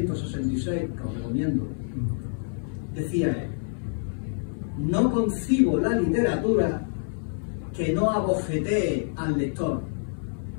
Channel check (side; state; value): right; silent; 58 dB below the other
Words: que os recomiendo, decía él: no concibo la literatura que no abofetee al lector,